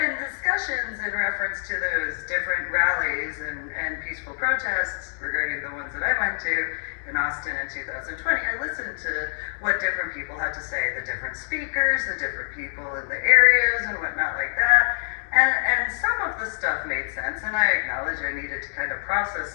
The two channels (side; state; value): right; silent; digital silence